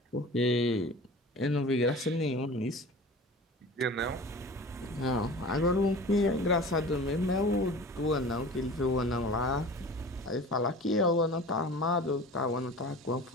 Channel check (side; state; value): both; normal; correlation 0.38